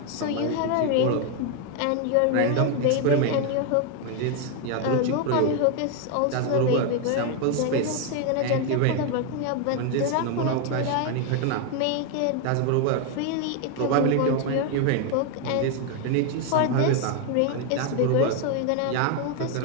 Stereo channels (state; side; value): different; both; correlation 0.01